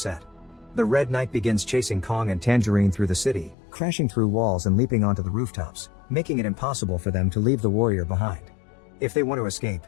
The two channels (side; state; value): right; drops out; at 3.6 s